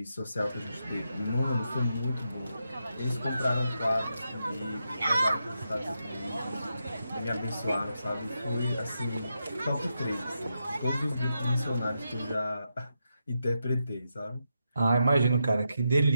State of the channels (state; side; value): inverted; both; correlation -0.86